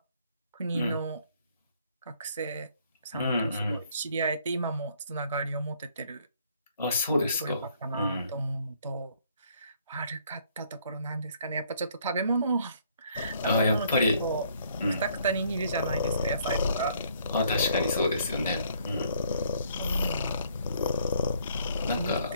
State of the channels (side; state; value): both; inverted; correlation -0.65